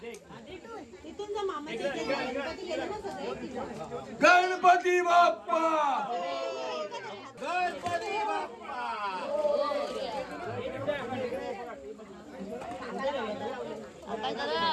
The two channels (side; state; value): both; identical; correlation 1.00